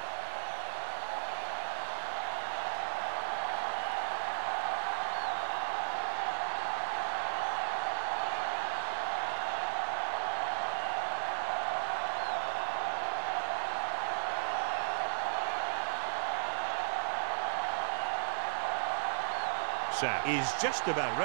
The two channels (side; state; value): left; silent; digital silence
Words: Is just about